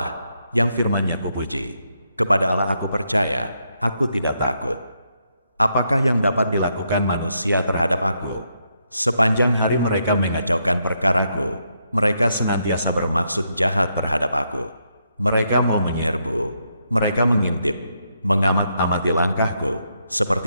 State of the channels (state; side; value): inverted; both; correlation -0.79